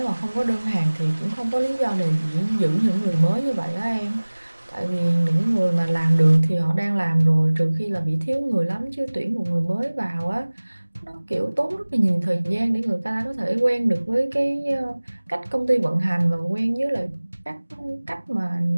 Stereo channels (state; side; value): inverted; both; correlation -1.00